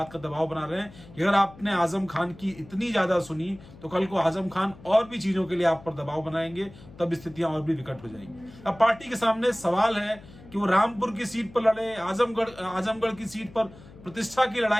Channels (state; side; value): noise; left; hum, 20 dB below the sound